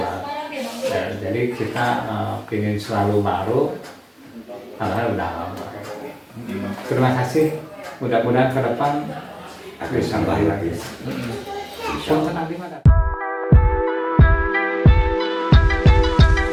Ya, jadi kita ingin selalu baru, padahal udah lama. Terima kasih. Mudah-mudahan ke depan bisa lagi. Punten abdi mah.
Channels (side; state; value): both; identical; correlation 1.00